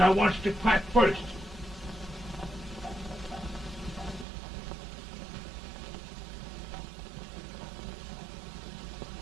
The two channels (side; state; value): left; drops out; at 4.2 s